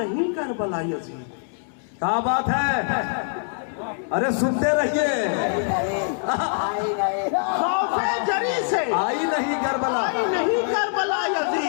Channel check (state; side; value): silent; right; digital silence